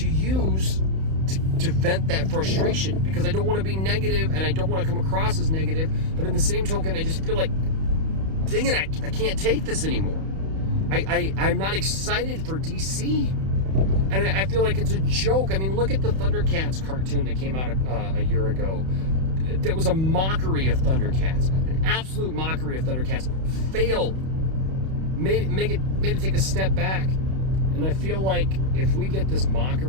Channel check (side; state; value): left; late; 31 ms